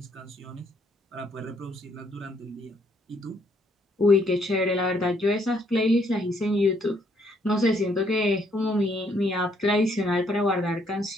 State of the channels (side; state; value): both; normal; correlation 0.69